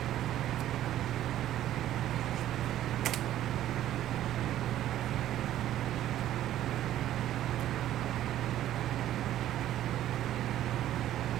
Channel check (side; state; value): left; quieter; 12.6 dB